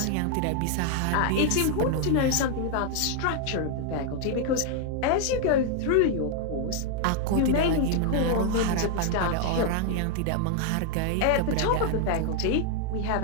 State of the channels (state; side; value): different; both; correlation 0.00